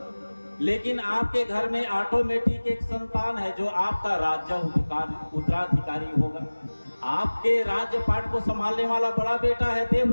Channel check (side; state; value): both; inverted; correlation -1.00